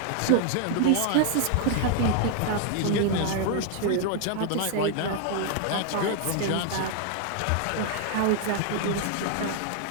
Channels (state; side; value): different; both; correlation 0.00